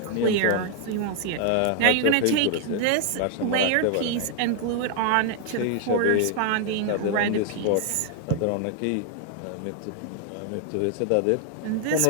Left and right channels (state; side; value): different; both; correlation 0.00